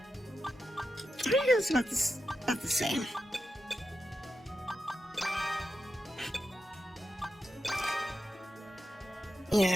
I think it was about the same.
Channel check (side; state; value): both; normal; correlation 0.89